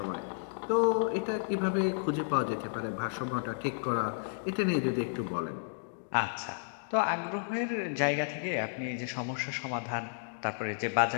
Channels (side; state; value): right; silent; digital silence